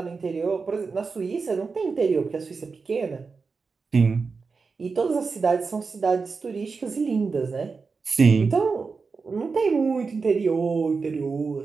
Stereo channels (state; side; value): quieter; left; 4.7 dB